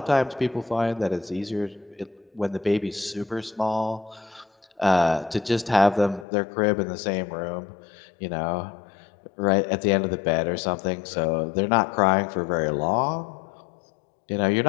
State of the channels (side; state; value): right; drops out; at 6.2 s